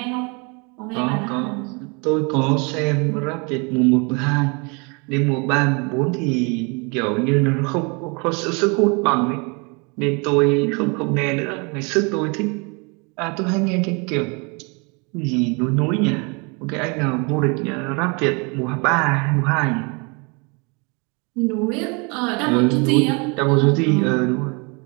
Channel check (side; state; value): left; quieter; 31.4 dB